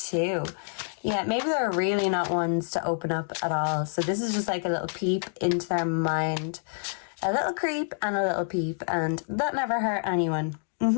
Yeah, maybe they're really not ones to open up at all. So this is just like a little peep into their mind. A little creep and a little peep. And that never hurt anyone.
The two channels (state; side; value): silent; right; digital silence